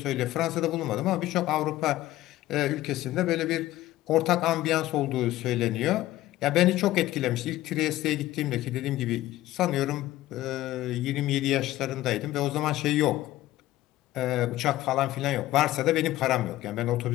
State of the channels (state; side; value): quieter; right; 15.7 dB